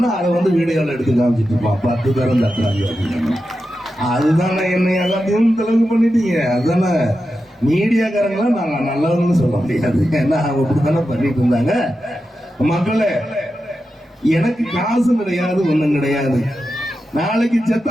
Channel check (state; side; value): normal; both; correlation 0.90